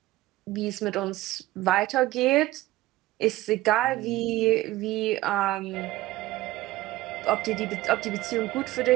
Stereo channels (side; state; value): left; quieter; 17.0 dB